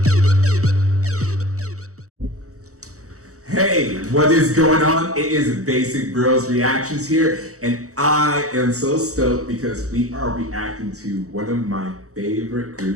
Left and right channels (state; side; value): late; left; 0.65 ms